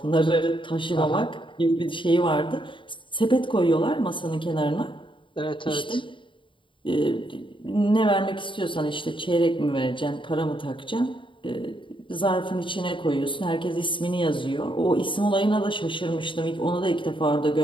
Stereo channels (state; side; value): late; right; 0.24 ms